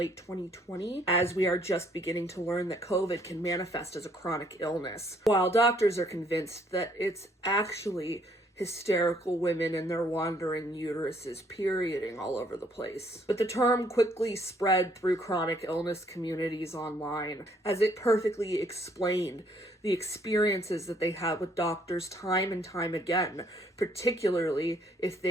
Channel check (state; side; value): normal; both; correlation 0.66